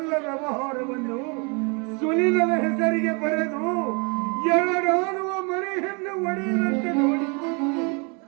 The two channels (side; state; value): left; quieter; 33.3 dB